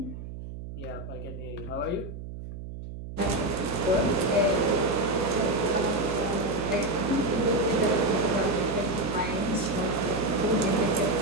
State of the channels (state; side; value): noise; right; hum, 10 dB below the sound